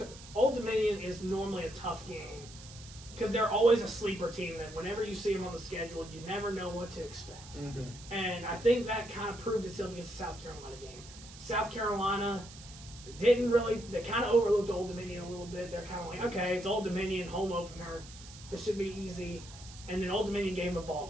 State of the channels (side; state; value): right; noise; hiss, 17 dB below the sound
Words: Old Dominion is normally a tough game because they're always a sleeper team that whenever you see them on the schedule, you never know what to expect. Mm-hmm. And I think that kind of proved itself against the South Carolina game. South Carolina they kind of overlooked Old Dominion a little bit. They're kind of like, okay, it's Old Dominion, home opener. This should be easy. And then Old Dominion gave them a ball